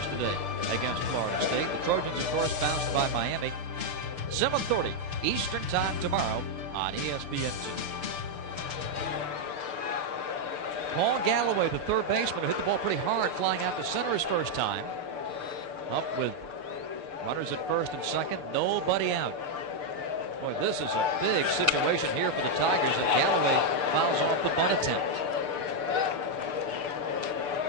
against Florida State. The Trojans, of course, bounced by Miami. 7:30 Eastern Time tomorrow on ESPN2. Paul Galloway, the third baseman, who hit the ball pretty hard flying out to center his first time. Up with runners at first and second, nobody out. Boy, this is a big situation here for the Tigers, and Galloway fouls off the bunt attempt.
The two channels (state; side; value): late; left; 6.8 ms